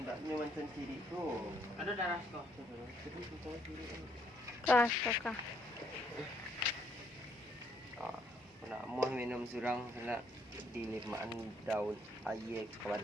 macam ciri tu. Ada darah tu. Kah, kakak. Ah, nak mau minum surang nak dilimaan daun air ke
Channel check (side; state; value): both; normal; correlation 0.70